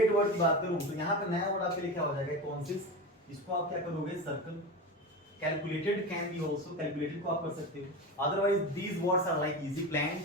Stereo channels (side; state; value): both; normal; correlation 0.24